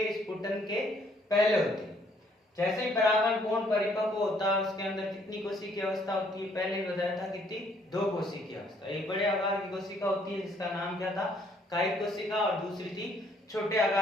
स्फुटन के पहले होती है। जैसे ही परागण पूर्ण परिपक्व होता है उसके अंदर कितनी कोशिकीय अवस्था होती है, पहले बताया था कितनी, दो कोशिकीय अवस्था। एक बड़े आकार की कोशिका होती है जिसका नाम क्या था, कायिक कोशिका, और दूसरी थी छोटे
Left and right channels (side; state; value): both; normal; correlation 0.66